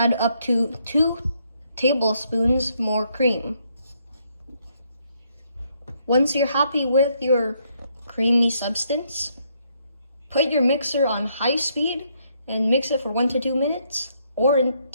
up to 2 tablespoons more cream. Once you're happy with your creamy substance, put your mixer on high speed and mix it for 1 to 2 minutes or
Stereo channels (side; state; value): both; inverted; correlation -0.73